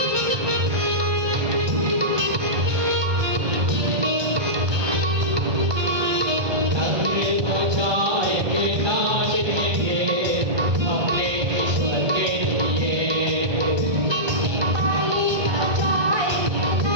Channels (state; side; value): late; left; 1.3 ms